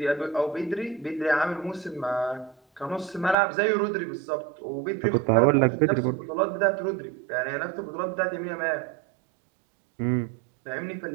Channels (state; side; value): drops out; left; at 3.4 s